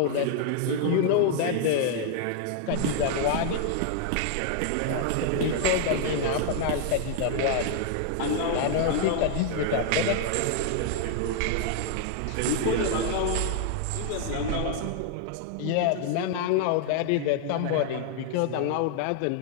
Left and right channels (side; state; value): both; different; correlation 0.00